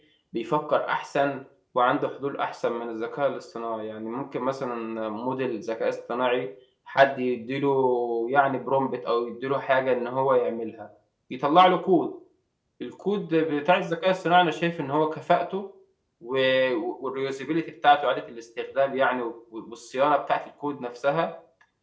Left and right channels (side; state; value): both; identical; correlation 1.00